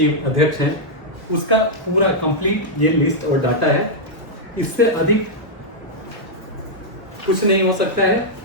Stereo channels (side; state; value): both; normal; correlation -0.05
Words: अध्यक्ष हैं, उसका पूरा कंप्लीट ये लिस्ट और डाटा है। इससे अधिक कुछ नहीं हो सकता है